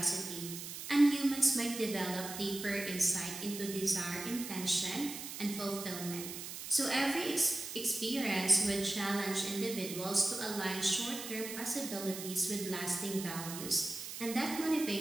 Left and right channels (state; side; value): noise; right; hiss, 8 dB below the sound